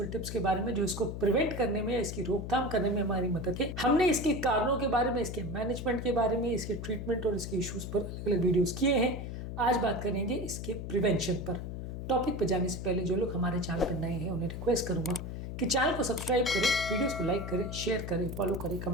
टिप्स के बारे में जो इसको प्रिवेंट करने में, इसकी रोकथाम करने में हमारी मदद है। हमने इसके कारणों के बारे में, इसके मैनेजमेंट के बारे में, इसके ट्रीटमेंट और इसके इश्यूज पर अलग अलग वीडियोस किए हैं। आज बात करेंगे इसके प्रिवेंशन पर। टॉपिक पर जाने से पहले जो लोग हमारे चैनल पर नए हैं उन्हें रिक्वेस्ट करूंगा कि चैनल को सब्सक्राइब करें, वीडियोस को लाइक करें, शेयर करें, फॉलो करें,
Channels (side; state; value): left; noise; hum, 6 dB below the sound